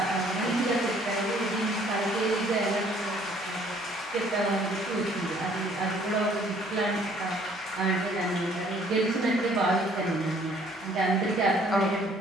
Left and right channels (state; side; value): normal; both; correlation 0.60